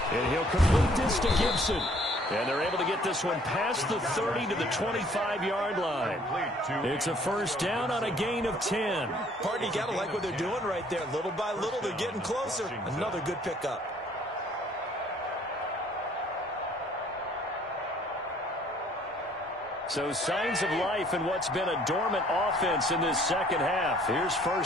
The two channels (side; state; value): both; normal; correlation 0.59